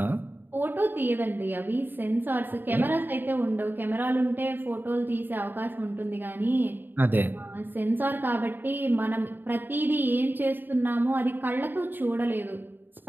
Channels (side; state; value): left; late; 0.093 ms